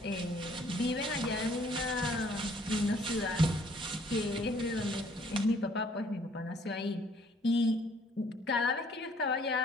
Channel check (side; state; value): both; normal; correlation 0.61